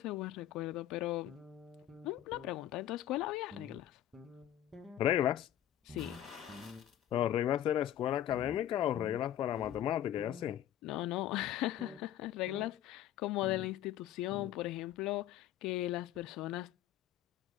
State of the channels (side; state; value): right; quieter; 12.1 dB